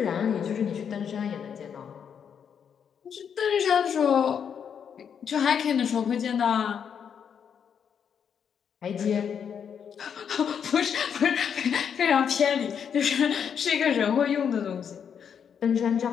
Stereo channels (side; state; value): right; quieter; 7.6 dB